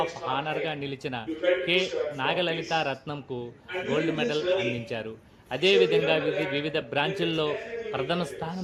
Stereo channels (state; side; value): identical; both; correlation 1.00